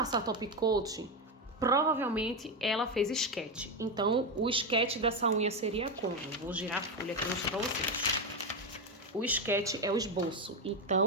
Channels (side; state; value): both; normal; correlation 0.11